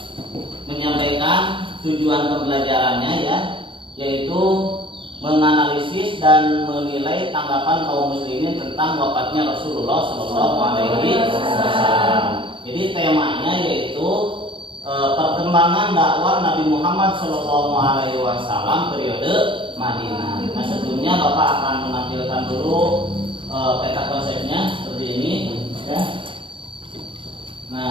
menyampaikan tujuan pembelajarannya ya, yaitu menganalisis dan menilai tanggapan kaum muslimin tentang wafatnya Rasulullah Shallallahu Alaihi Wasallam. Jadi temanya yaitu perkembangan dakwah Nabi Muhammad Shallallahu Alaihi Wasallam periode Madinah. Nah, sebelumnya Bapak akan menampilkan dulu peta konsepnya seperti ini ya.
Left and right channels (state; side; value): late; left; 0.25 ms